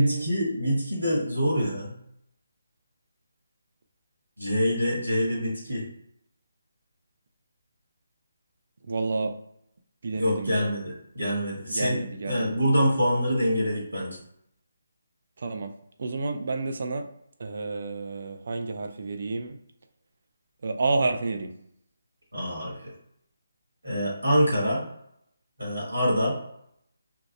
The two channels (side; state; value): both; inverted; correlation -0.86